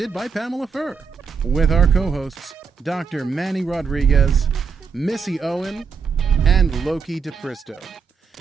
by Pamela Furr, with our co-hosts Dr. Manny Rodriguez, Missy Owen, and Loki DePristo.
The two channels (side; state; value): left; quieter; 5.7 dB